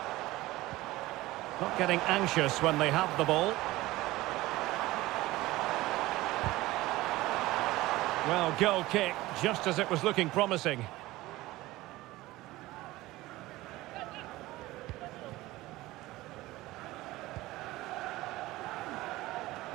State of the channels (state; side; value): quieter; left; 18.3 dB